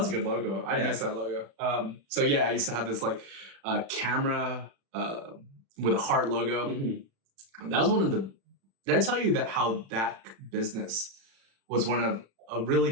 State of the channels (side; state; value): left; late; 36 ms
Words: a good logo. I miss that logo. So yeah, I used to have this camera with a heart logo. Mm-hmm. That was one of the. Did I tell you how that business was a really